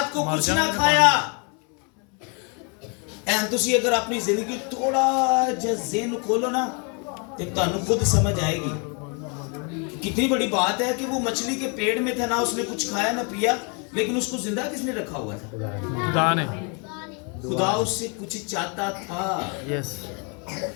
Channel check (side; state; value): right; quieter; 35.2 dB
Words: को कुछ ना खाया। तुसी अगर अपनी जिंदगी थोड़ा जिहा ज़हन खोलो ना, तो तुहानू खुद समझ आएगी कितनी बड़ी बात है कि वो मछली के पेट में था, ना उसने कुछ खाया ना पिया, लेकिन उसको जिंदा किसने रखा हुआ था? खुदा ने। खुदा उससे कुछ चाहता था। यस।